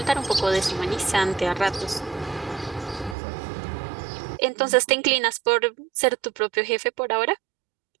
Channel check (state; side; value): drops out; left; at 3.2 s